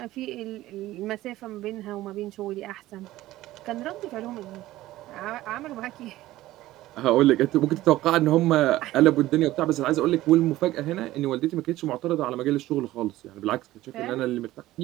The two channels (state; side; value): quieter; left; 16.0 dB